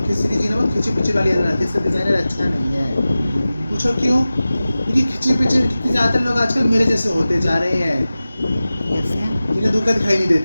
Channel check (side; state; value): both; inverted; correlation -0.96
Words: खिचड़ी जी ने बहुत खिंची पिची वाली एड बनाती है। इसका डिज़ाइनर अच्छा नहीं है। पूछो क्यों? क्योंकि खिंची पिची कितने ज़्यादातर लोग आजकल मेरे जैसे होते जा रहे हैं, कैसे? जिन्हें दूर का दिखाई नहीं